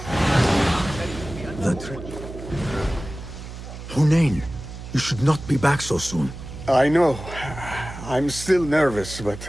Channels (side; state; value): right; noise; hum, 11 dB below the sound